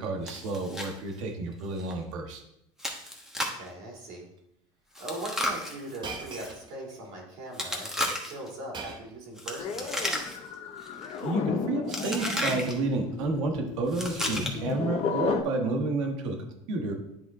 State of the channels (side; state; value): both; normal; correlation 0.45